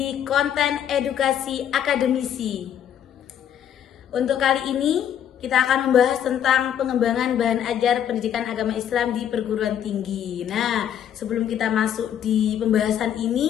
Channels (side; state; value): right; quieter; 9.7 dB